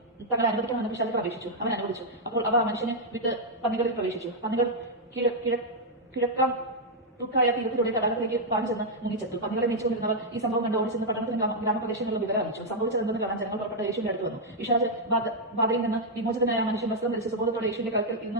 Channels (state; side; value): normal; both; correlation -0.03